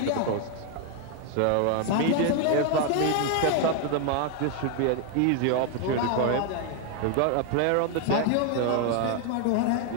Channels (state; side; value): different; both; correlation 0.01